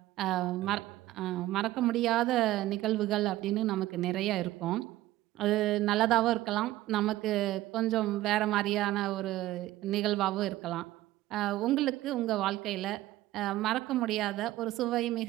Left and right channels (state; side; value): quieter; left; 15.8 dB